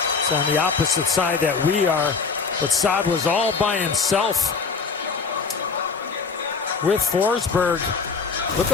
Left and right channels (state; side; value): quieter; right; 5.0 dB